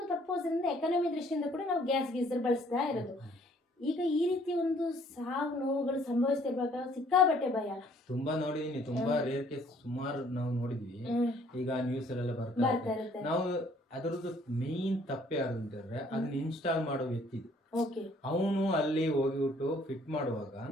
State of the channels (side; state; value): both; normal; correlation 0.61